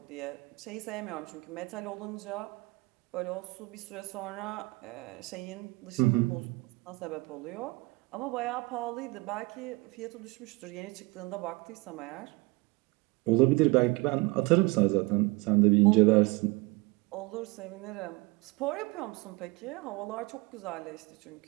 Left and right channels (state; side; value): quieter; left; 24.5 dB